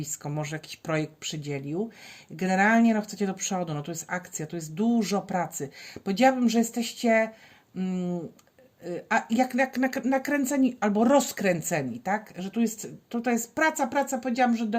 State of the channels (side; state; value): both; identical; correlation 1.00